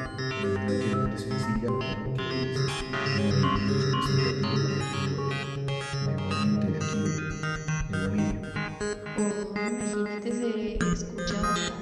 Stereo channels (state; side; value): identical; both; correlation 1.00